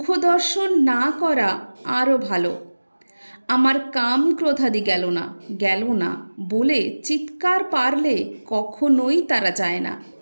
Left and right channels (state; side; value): inverted; both; correlation -1.00